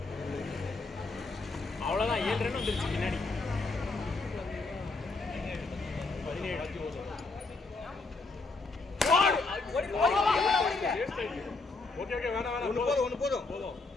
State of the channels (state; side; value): quieter; right; 3.7 dB